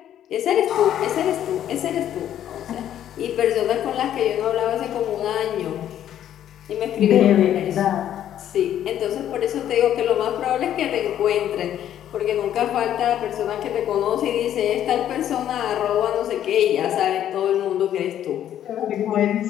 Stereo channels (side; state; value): right; quieter; 10.9 dB